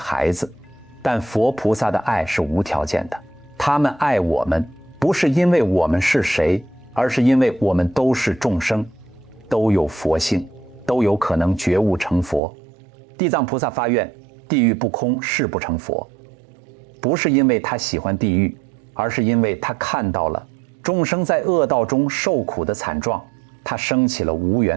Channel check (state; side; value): drops out; left; at 12.4 s